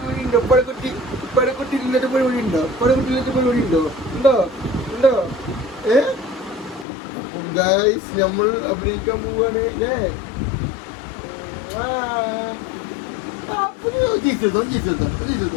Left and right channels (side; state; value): right; drops out; at 6.9 s